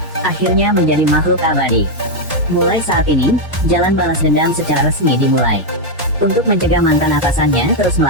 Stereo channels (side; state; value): both; normal; correlation 0.01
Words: Akhirnya menjadi makhluk abadi. Mulai saat ini, jalan balas dendam secara resmi dimulai. Untuk mencegah mantan atasannya terus